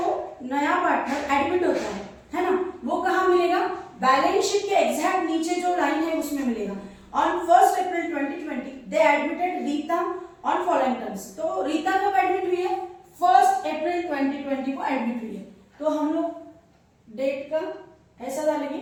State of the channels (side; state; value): both; identical; correlation 1.00